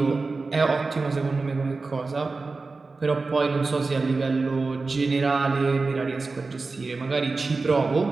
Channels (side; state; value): left; quieter; 3.9 dB